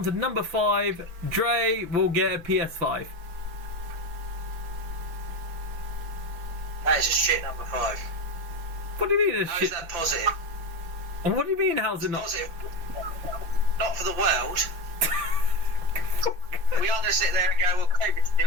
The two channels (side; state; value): left; late; 6.0 ms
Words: to number five, Dre will get a PS5. That is a shit number 5. What do you mean? How is that positive? What do you mean? How's it not positive? Not for the world. We are going to sit there and go, well, COVID's